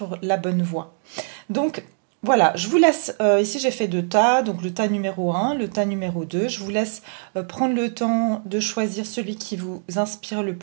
la bonne voie. Donc voilà, je vous laisse, ici j'ai fait 2 tas, donc le tas numéro 1, le tas numéro 2. Je vous laisse prendre le temps de choisir celui qui vous inspire le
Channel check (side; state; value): left; silent; digital silence